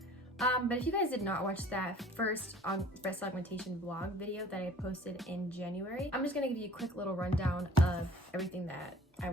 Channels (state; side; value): normal; both; correlation 0.50